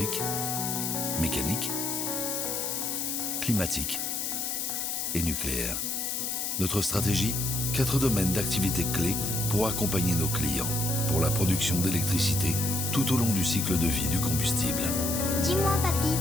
mécanique, climatique et nucléaire. Notre stratégie, 4 domaines d'activité clés pour accompagner nos clients pour la production d'électricité tout au long du cycle de vie du combustible. Dis-moi, papy,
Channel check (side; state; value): left; noise; hiss, 1 dB below the sound